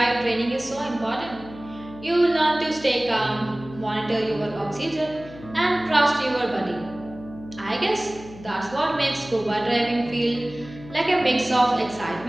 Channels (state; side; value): noise; left; hum, 17 dB below the sound